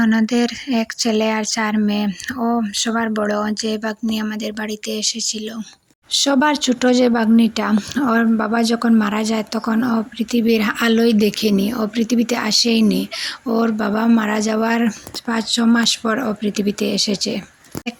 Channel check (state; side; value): identical; both; correlation 1.00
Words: 1 ছেলে আর 4 মেয়ে। ও সবার বড়, যে বাগ্নি আমাদের বাড়িতে এসেছিল। সবার ছোট যে বাগ্নিটা, ওর বাবা যখন মারা যায় তখন ও পৃথিবীর আলোই দেখেনি, ও পৃথিবীতে আসেইনি। ওর বাবা মারা যাওয়ার 5-6 মাস পর ও পৃথিবীতে এসেছে।